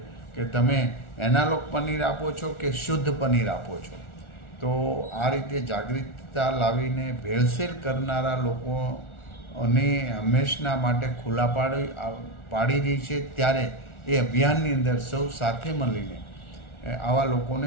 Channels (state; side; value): late; right; 1.4 ms